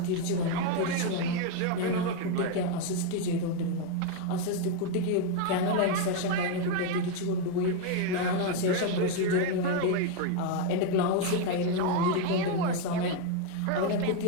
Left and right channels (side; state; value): both; different; correlation 0.01